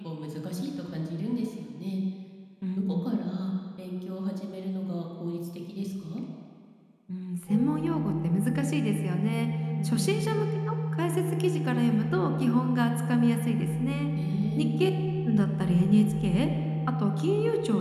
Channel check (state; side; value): identical; both; correlation 1.00